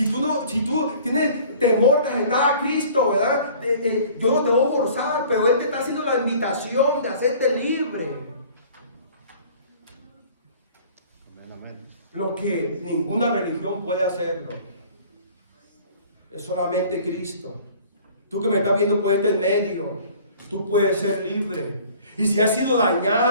tú tienes temor de aceptar a Cristo, ¿verdad? Yo no te voy a forzar, pero Él te está haciendo la invitación de hacerte libre. Amén, amén. Lo que ninguna religión puede hacerlo es solamente Cristo. Tú que me estás viendo por este medio, tú puedes ser libre. Y si has sido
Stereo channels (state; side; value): inverted; both; correlation -0.50